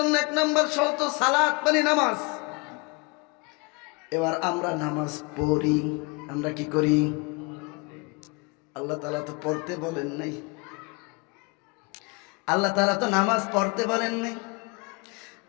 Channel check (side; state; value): right; quieter; 28.8 dB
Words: 1 নাম্বার শর্ত সালাত মানে নামাজ। এবার আমরা নামাজ পড়ি, আমরা কি করি? আল্লাহ তাআলা তো পড়তে বলেন নাই, আল্লাহ তাআলা তো নামাজ পড়তে বলেন নাই।